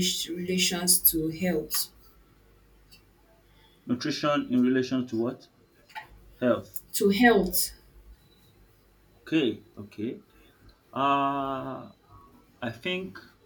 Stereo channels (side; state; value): both; identical; correlation 1.00